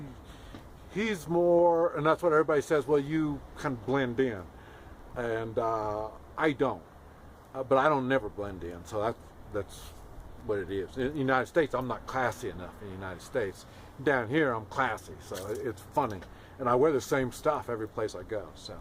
more, and that's what everybody says, well, you kind of blend in, and I don't, but I don't never blend in, so that's what it is. In the United States, I'm not classy enough in the United States. Down here, I'm classy, so it's funny, and I wear the same stuff every place I go, so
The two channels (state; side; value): identical; both; correlation 1.00